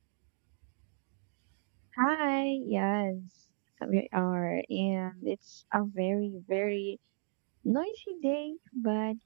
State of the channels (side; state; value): left; silent; digital silence